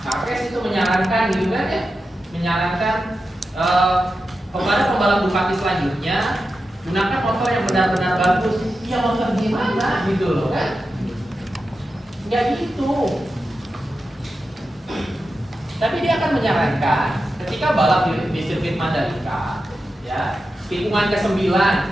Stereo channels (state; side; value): normal; both; correlation 0.90